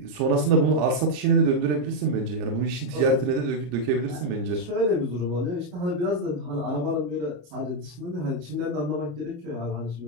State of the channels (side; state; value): left; late; 34 ms